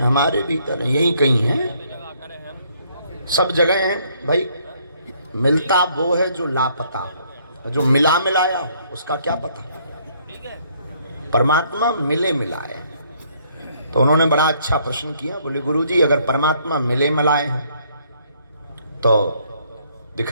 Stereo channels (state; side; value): inverted; both; correlation -0.66